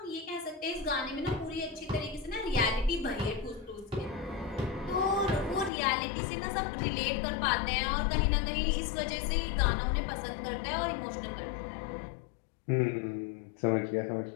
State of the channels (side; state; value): right; drops out; at 5.7 s